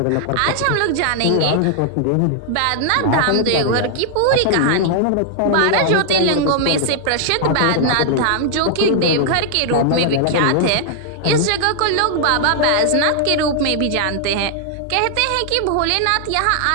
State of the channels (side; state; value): both; different; correlation -0.01